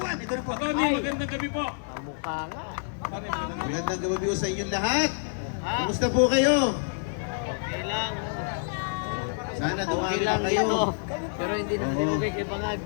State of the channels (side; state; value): right; silent; 60 dB below the other